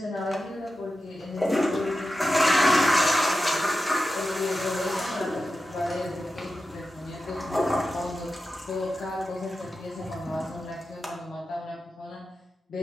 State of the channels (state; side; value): normal; both; correlation 0.92